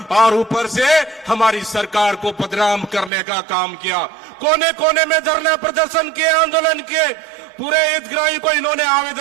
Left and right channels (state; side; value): drops out; left; at 3.1 s